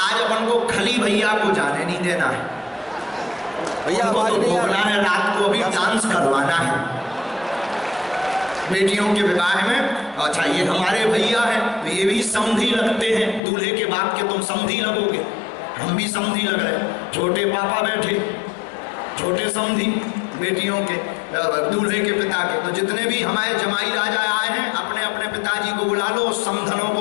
अपन को खली भैया को जाने नहीं देना है, भैया तो भोगना है, रात को अभी डांस करवाना है बेटियों के विवाह में। अच्छा, ये हमारे भैया हैं, तो ये भी समधी लगते हैं, दूल्हे के बाप के तुम समधी लगोगे, हम भी समधी लग रहे। छोटे पापा बैठे, छोटे समधी बेटियों के, दूल्हे के पिता के। तो जितने भी हमारे जमाई राजा आए हैं, अपने अपने पिताजी को बुला लो, समधनों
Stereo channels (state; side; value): drops out; right; at 13.4 s